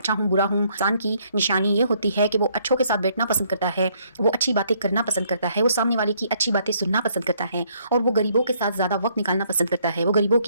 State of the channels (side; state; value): both; inverted; correlation -0.68